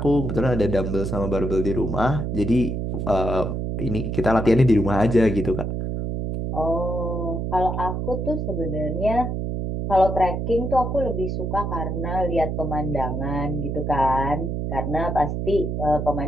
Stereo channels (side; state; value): right; noise; hum, 2 dB below the sound